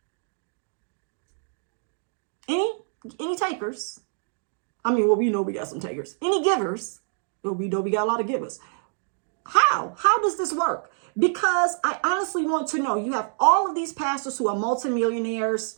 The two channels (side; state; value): left; silent; digital silence